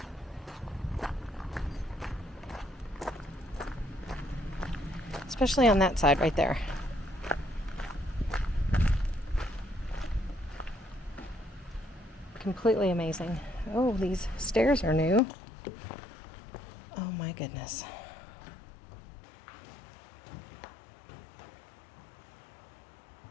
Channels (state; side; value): drops out; right; at 15.2 s